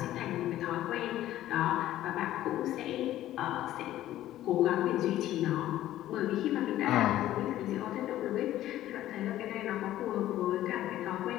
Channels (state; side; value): quieter; right; 13.7 dB